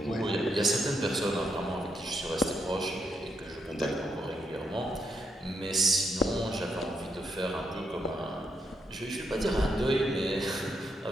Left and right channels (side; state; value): both; normal; correlation 0.78